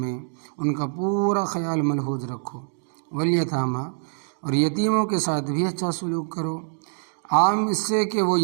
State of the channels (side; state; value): left; silent; digital silence